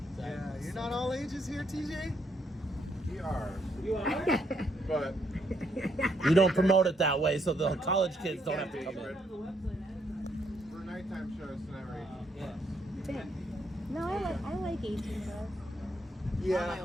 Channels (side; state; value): both; normal; correlation 0.74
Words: So Yeah, I'm you're so- not all ages here, TJ? We are. You are? But You don't promote it that way, so the college kids don't have to come in. for nighttime shows tonight, Yeah. No, I like 18 plus. My Yeah.